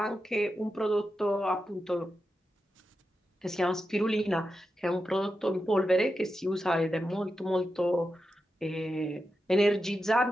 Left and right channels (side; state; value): both; normal; correlation 0.89